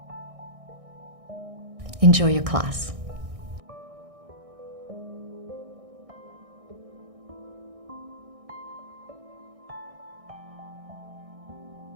Enjoy your class.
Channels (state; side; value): late; left; 1.6 ms